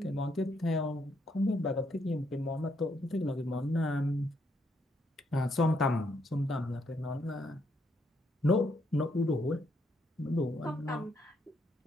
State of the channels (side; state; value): both; normal; correlation 0.74